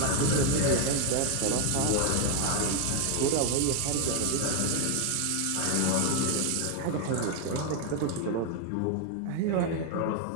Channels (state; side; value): different; both; correlation 0.01